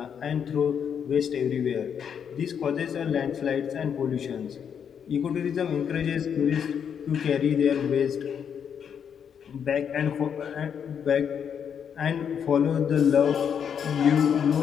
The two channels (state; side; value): quieter; right; 7.8 dB